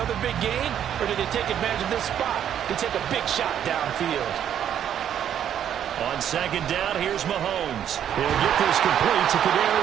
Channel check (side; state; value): left; quieter; 9.7 dB